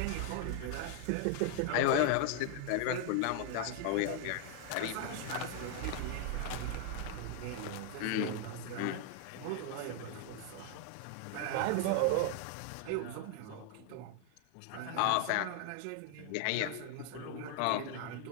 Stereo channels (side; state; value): both; different; correlation 0.00